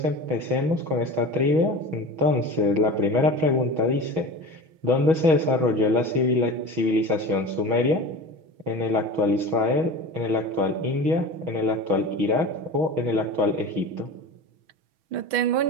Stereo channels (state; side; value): late; left; 6.2 ms